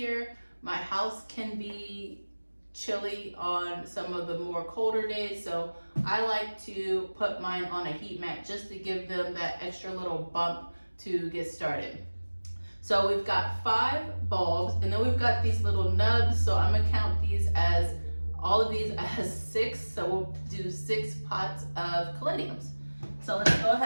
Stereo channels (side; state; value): both; inverted; correlation -1.00